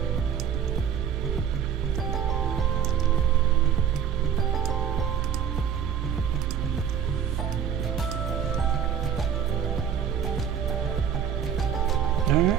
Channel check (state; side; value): quieter; left; 8.7 dB